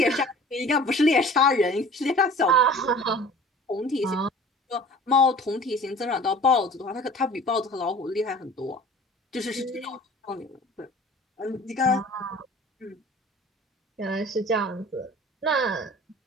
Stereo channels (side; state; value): both; normal; correlation 0.45